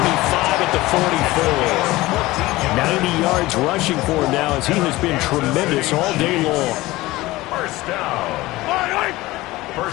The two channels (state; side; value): quieter; right; 18.9 dB